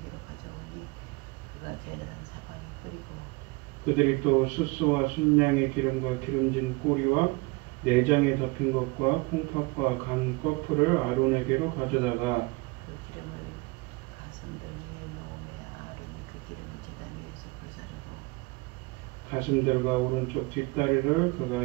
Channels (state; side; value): quieter; left; 26.0 dB